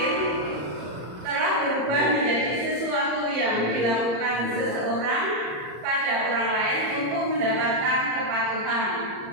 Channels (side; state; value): left; late; 34 ms